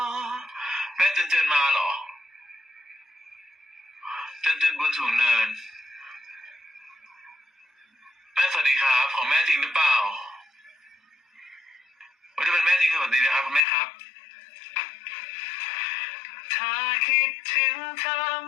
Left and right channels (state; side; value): drops out; right; at 13.6 s